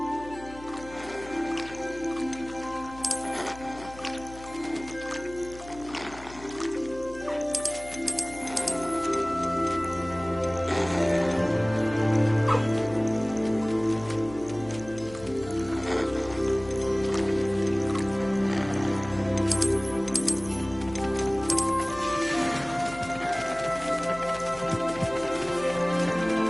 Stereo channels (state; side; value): noise; left; hum, 17 dB below the sound